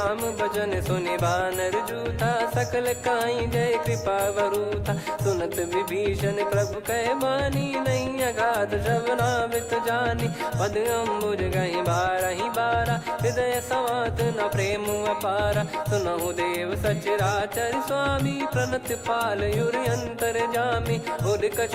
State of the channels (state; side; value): identical; both; correlation 1.00